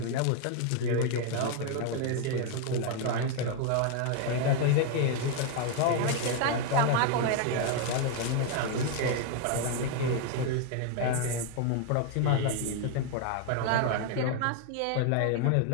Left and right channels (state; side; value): different; both; correlation 0.01